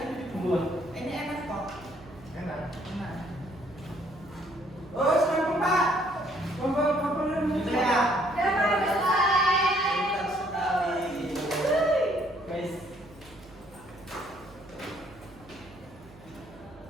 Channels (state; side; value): noise; right; hum, 22 dB below the sound